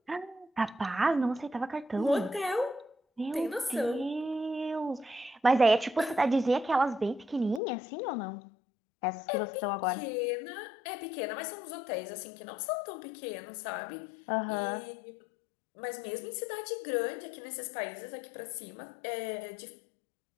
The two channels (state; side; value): drops out; right; at 7.6 s